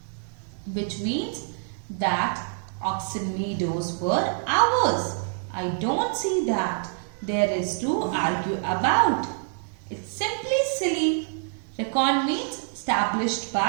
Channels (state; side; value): silent; left; digital silence